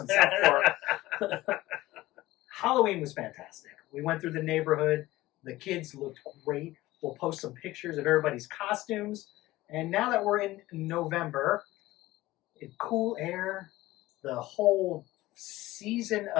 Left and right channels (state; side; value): quieter; right; 17.5 dB